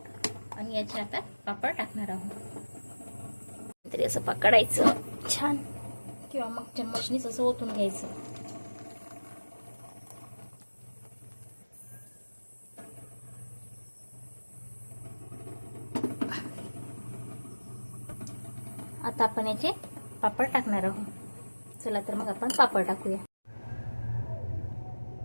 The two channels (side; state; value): both; inverted; correlation -1.00